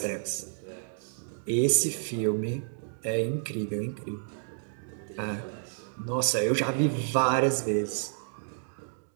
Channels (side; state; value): left; silent; digital silence